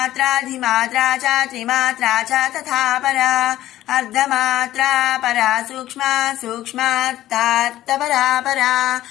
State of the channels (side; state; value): right; quieter; 14.1 dB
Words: च त्रिमात्रा च तथा परा अर्धमात्रा परा सूक्ष्मा सूक्ष्मार्थार्थपरा परा